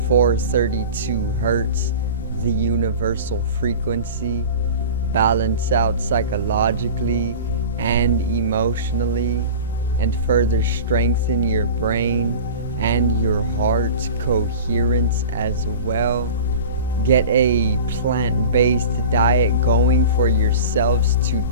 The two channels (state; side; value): inverted; both; correlation -0.35